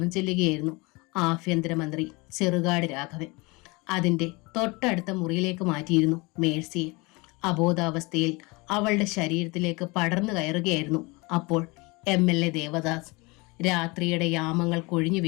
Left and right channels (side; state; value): right; quieter; 25.7 dB